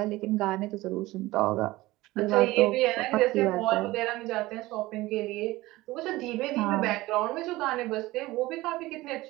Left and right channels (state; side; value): quieter; left; 18.9 dB